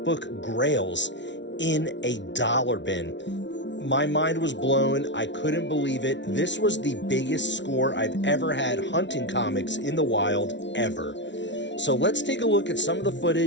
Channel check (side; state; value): right; late; 0.52 ms